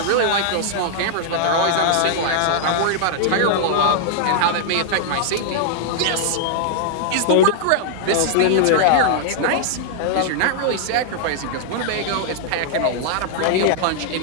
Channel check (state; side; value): different; both; correlation -0.01